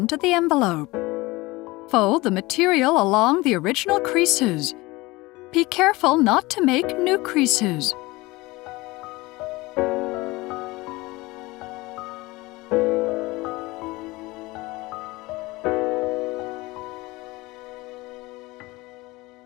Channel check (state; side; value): quieter; right; 21.5 dB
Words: the envelope. Fold the material along the original creases. Be careful not to make new creases.